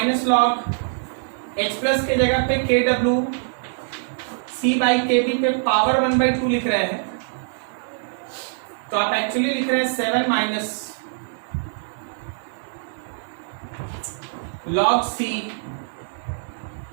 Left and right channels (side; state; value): left; silent; digital silence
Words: लॉग H प्लस के जगह पे KW C बाई KB पे पावर 1/2 लिख रहे हैं, तो आप एक्चुअली लिख रहे हैं 7 minus log C